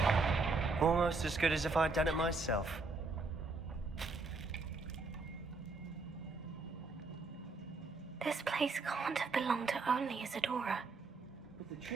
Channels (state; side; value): quieter; left; 3.8 dB